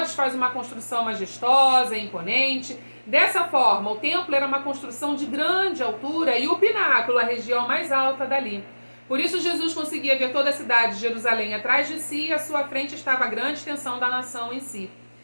faz uma construção majestosa, imponente. Dessa forma, o templo era uma construção de grande altura e o pináculo, a região mais alta dali. Por isso Jesus conseguia ver toda a cidade de Jerusalém atrás de si e à sua frente estava a grande extensão da nação em si.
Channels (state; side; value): inverted; both; correlation -1.00